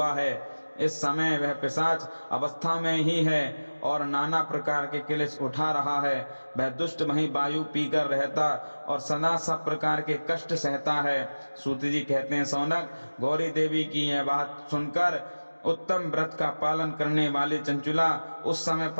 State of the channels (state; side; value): inverted; both; correlation -1.00